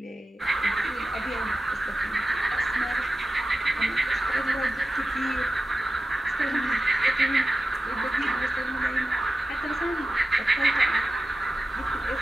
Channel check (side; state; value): both; normal; correlation 0.94